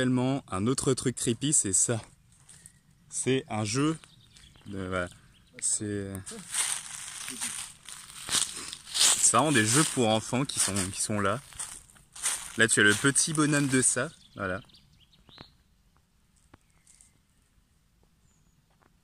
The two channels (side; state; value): both; identical; correlation 1.00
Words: un autre truc creepy, c'est ça. C'est un jeu. Voilà. C'est vraiment des jeux pour enfants qui sont là. Là, tu as le petit bonhomme de ça. Voilà.